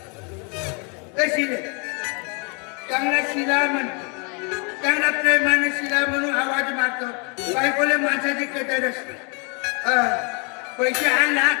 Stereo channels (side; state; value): right; quieter; 35.2 dB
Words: कशी रे चांगला शिला म्हणतो चांगला प्रेमाने शिला म्हणून आवाज मारतो. बायकोले माणसाची कदरच नाही. पैसे आणला